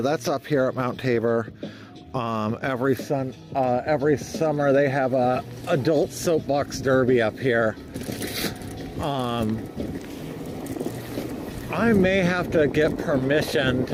that's up here at Mount Tabor. Every summer they have a adult soapbox derby up here. I may have to get permission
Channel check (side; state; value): both; identical; correlation 1.00